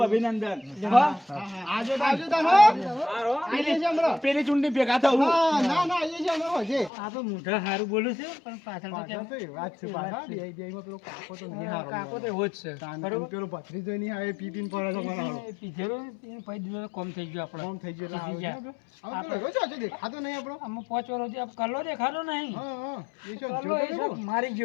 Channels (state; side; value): drops out; right; at 6.9 s